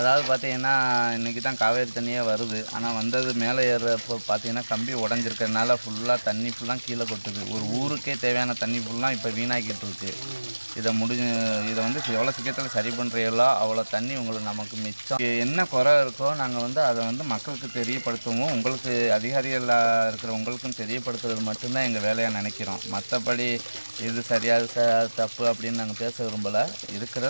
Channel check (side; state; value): both; inverted; correlation -1.00